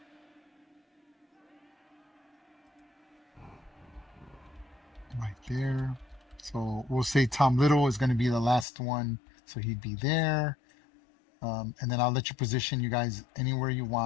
right there. So we'll say Tom Little is going to be the last one. So he'd be there. And then I'll let you position you guys anywhere you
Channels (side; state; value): right; drops out; at 8.7 s